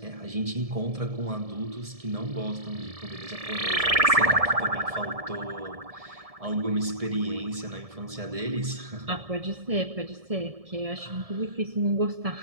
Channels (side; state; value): left; late; 1.7 ms